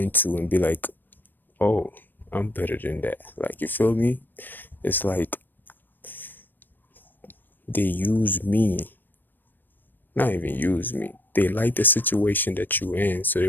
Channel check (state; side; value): late; right; 0.092 ms